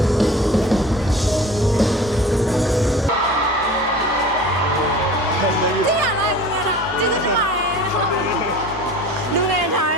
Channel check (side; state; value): both; normal; correlation 0.40